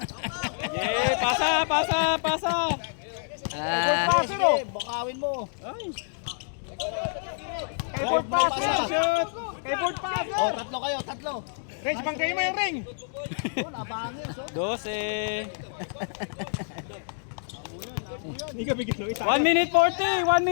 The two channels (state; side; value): silent; right; digital silence